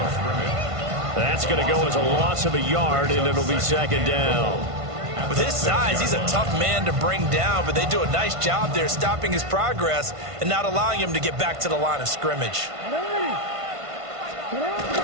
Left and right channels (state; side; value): late; left; 1.5 ms